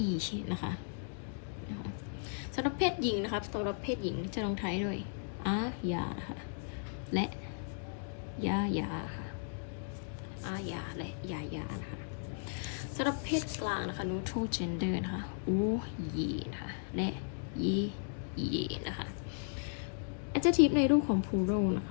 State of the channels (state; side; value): silent; right; digital silence